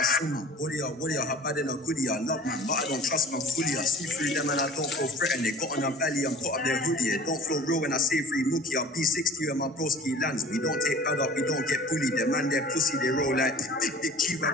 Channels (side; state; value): both; normal; correlation 0.45